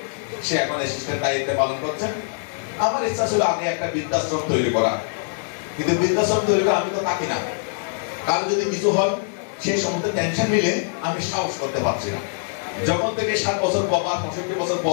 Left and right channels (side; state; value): right; silent; digital silence